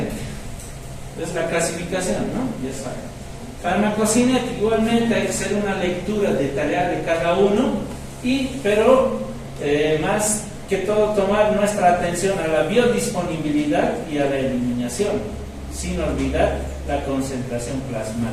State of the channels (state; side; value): identical; both; correlation 1.00